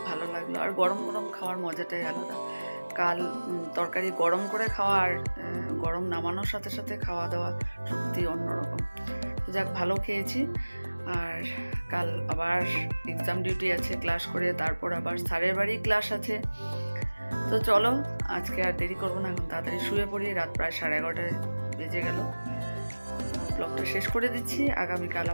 ভালো লাগলো। আর গরম গরম খাওয়ার মজাটাই আলাদা। কাল তরকারি গরম করে খাওয়া আর গরম নামানোর সাথে সাথে খাওয়া দাওয়া সত্যি অন্যরকম। যাক, ভালো খেয়েছি। আর কাল আবার এক্সাম ডিউটি আছে, ক্লাস করে তারপর আবার স্যারের বাড়ি ক্লাস আছে। তো চলো আজকে আর দেরি করবো না, এখন তাড়াতাড়ি শুয়ে পড়ি। রাত প্রায় 11:30 বেজে গেল। ব্লগটা শেষ করে দিচ্ছি। আগামীকাল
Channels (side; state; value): both; inverted; correlation -1.00